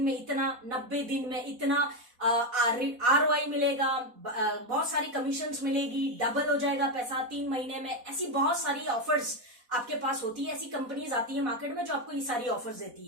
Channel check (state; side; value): late; left; 4.1 ms